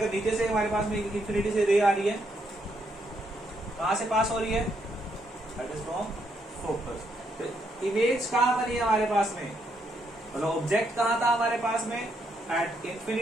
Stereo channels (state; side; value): normal; both; correlation 0.76